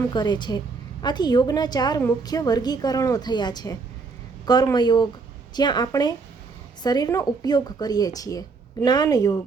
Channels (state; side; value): quieter; left; 4.5 dB